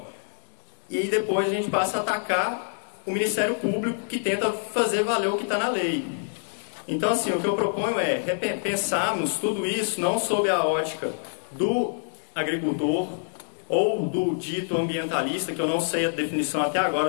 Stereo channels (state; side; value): silent; right; digital silence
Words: E depois a gente passa a atacar o Ministério Público, que tenta fazer valer o que está na lei. Então, assim, o que eu proponho é pensarmos tudo isso não sob a ótica do agricultor ou do dito ambientalista, que eu não sei a definição até